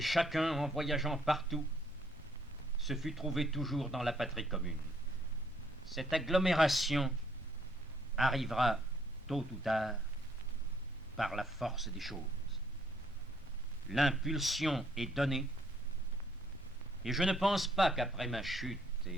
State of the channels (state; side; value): normal; both; correlation 0.67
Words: chacun, en voyageant partout, se fut trouvé toujours dans la patrie commune. Cette agglomération arrivera, tôt ou tard, par la force des choses. L'impulsion est donnée, et je ne pense pas qu'après ma chute